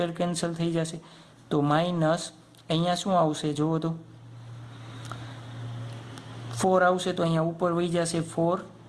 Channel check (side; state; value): both; identical; correlation 1.00